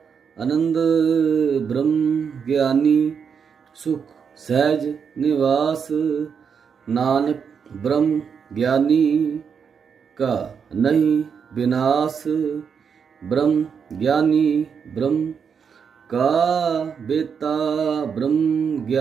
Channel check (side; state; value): left; quieter; 6.7 dB